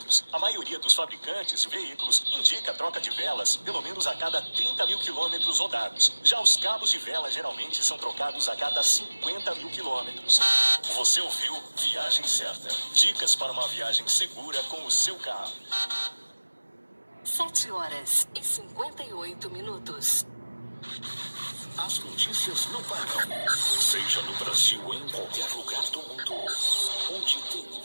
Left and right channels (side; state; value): both; inverted; correlation -1.00